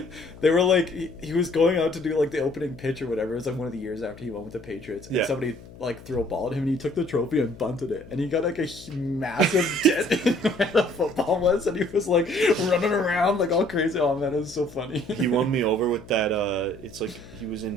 They were like, he was going out to do like the opening pitch or whatever. It was like one of the years after he went with the Patriots, and somebody like threw a ball at him, and he took the trophy and bunted it, and he got like a massive dent in where the football was, and he was like running around like all crazy. Oh man, it was so funny. He won me over with that. It's like he was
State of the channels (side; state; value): left; noise; hum, 19 dB below the sound